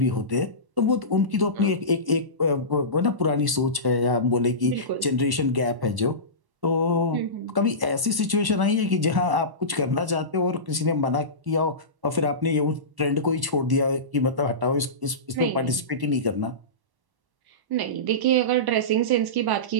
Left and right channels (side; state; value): left; late; 1.1 ms